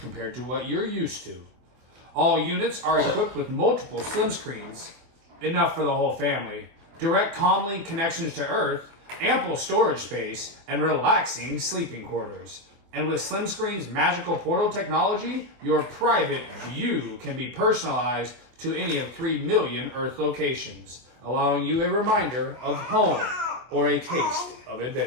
to what you're used to. All units are equipped with multiple slim screens, enough for the whole family, direct comlink connections to Earth, ample storage space, and relaxing sleeping quarters. And with Slim Screen's magical portal technology, your private view can be personalized to any of 3 million Earth locations, allowing you a reminder of home or a taste of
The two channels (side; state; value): left; late; 24 ms